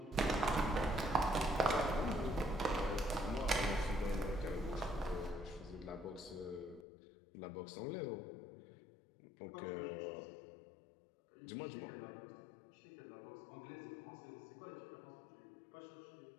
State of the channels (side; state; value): right; drops out; at 6.9 s